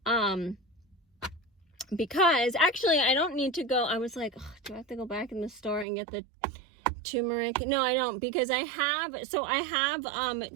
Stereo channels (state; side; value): drops out; left; at 5.9 s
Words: Because actually I don't need to go. I was like, oh, do I have to go back in the store and get the turmeric? No, I don't, because I have